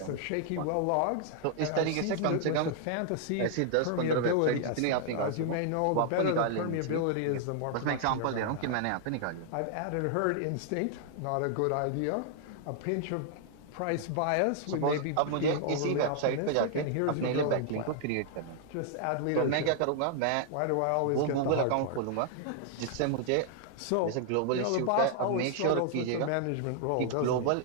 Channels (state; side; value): different; both; correlation 0.00